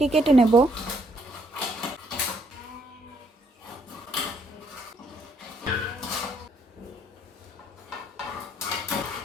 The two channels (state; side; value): normal; both; correlation 0.69